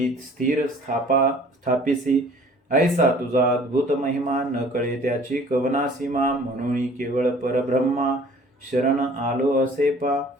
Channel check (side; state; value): both; normal; correlation 0.51